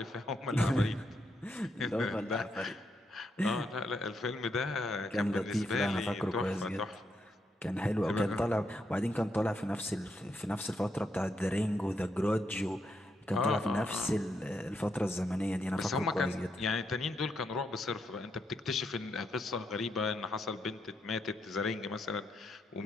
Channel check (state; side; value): normal; both; correlation 0.80